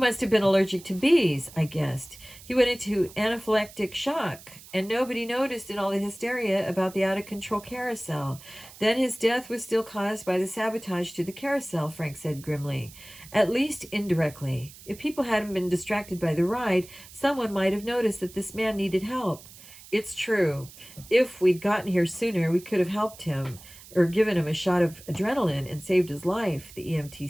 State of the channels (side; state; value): right; noise; hiss, 19 dB below the sound